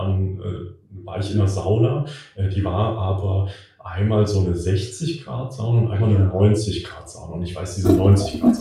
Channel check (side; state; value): both; identical; correlation 1.00